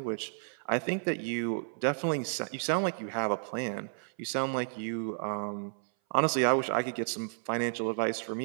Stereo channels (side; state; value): left; silent; 56 dB below the other